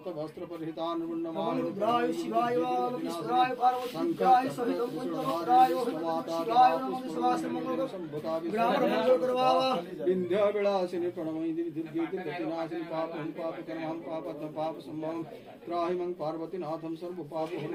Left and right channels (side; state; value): both; identical; correlation 1.00